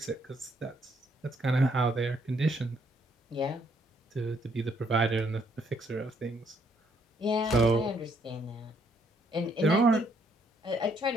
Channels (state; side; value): normal; both; correlation 0.70